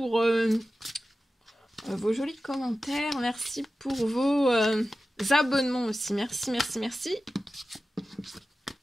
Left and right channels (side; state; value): both; normal; correlation 0.94